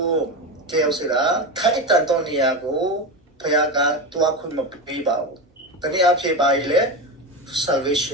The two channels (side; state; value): both; normal; correlation 0.19